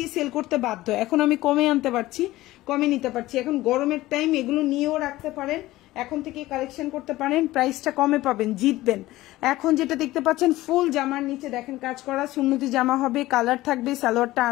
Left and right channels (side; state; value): right; quieter; 17.2 dB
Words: সেল করতে বাধ্য। এখন আমি কমে আনতে পারছি, কমে নিতে পারছি। এখন গরমের টাইম, এগুলো নিয়েও রাখতে পারেন, এখন থেকে কালেকশন করতে পারেন, প্রাইসটা কমে পাবেন, জিতবেন। এখন যেটা দেখতে পাচ্ছেন ফুল জামার নিচে দেখেন কাজ করা সুন্নতি জামা হবে, কালার থাকবে, সালোয়ারটা